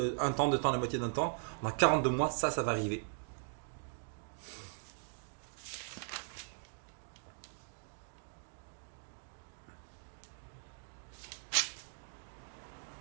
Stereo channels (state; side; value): silent; left; digital silence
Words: un temps, 2 temps, la moitié d'un temps, dans 42 mois, ça va arriver.